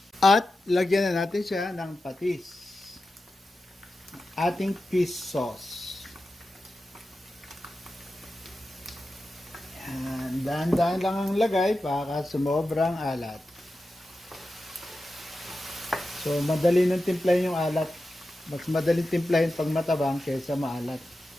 At lagyan na natin siya ng patis, ating fish sauce. Dahan-dahan lang ang lagay para sumobrang alat. So, madali nang timplahin yung alat. Mas madaling timplahin pag matabang kaysa maalat.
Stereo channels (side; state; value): both; normal; correlation 0.92